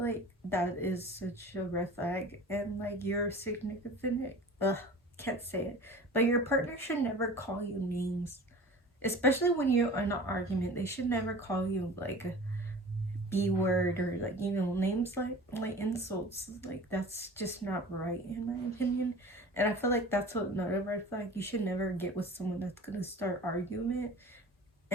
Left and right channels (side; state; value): both; normal; correlation 0.40